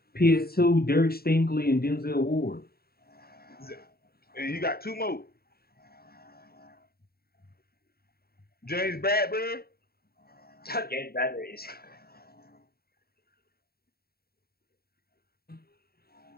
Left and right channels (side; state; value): right; late; 0.45 ms